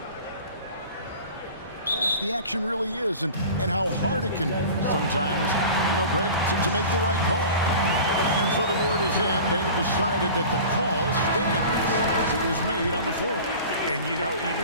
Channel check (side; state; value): both; inverted; correlation -0.38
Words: Fast the action really is, and how hard it can be sometimes, Greg, to make the right call. And so the word is in. They've decided that the call stands as it was made on the floor. And,